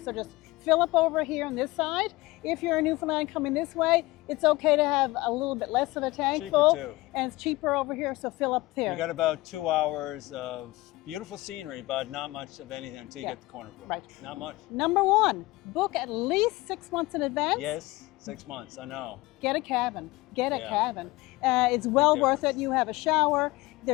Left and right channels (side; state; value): right; quieter; 20.4 dB